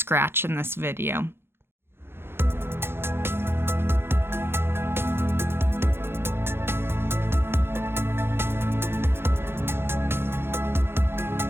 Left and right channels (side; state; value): left; late; 0.11 ms